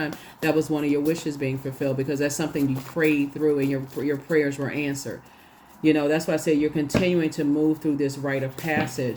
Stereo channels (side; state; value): both; identical; correlation 1.00